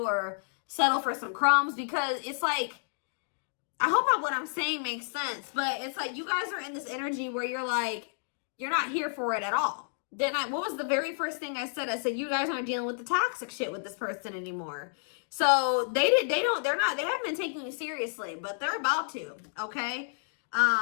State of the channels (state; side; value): silent; right; digital silence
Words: or settle for some crumbs, because it's like, I hope what I'm saying makes sense, but it's like you guys are in this energy where you're like, you're not here for it at all. Then what was the very first thing I said? I said, you guys aren't dealing with the toxic shit with this person anymore. So they haven't been taking you seriously, but they're about to, okay?